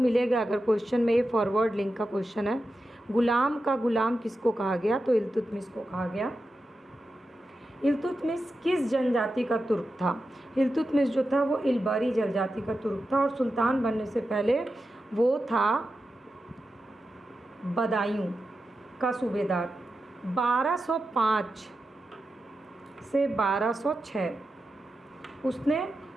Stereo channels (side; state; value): both; normal; correlation 0.90